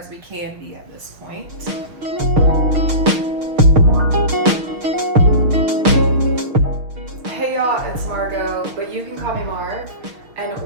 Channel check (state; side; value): late; left; 6.5 ms